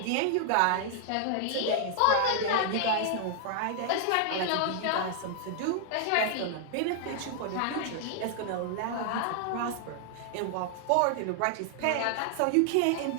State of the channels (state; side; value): different; both; correlation 0.00